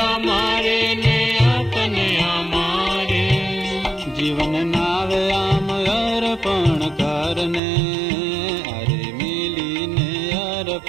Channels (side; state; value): left; drops out; at 7.6 s